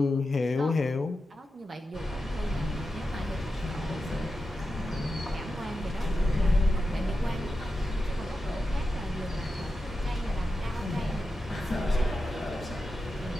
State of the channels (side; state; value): both; normal; correlation 0.90